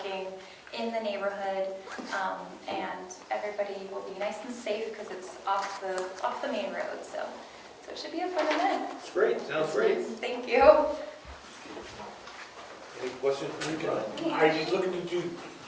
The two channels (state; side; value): identical; both; correlation 1.00